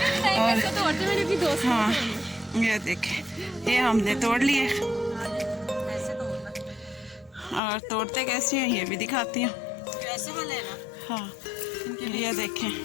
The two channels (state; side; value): drops out; right; at 7.6 s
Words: और हाँ, ये देखें ये हमने तोड़ लिए और तोड़ते कैसे हैं ये भी दिखाती हूँ। कैसे वाले ना? हाँ, ये देखें